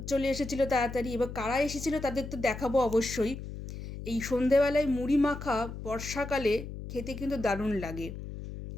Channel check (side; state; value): left; noise; hum, 9 dB below the sound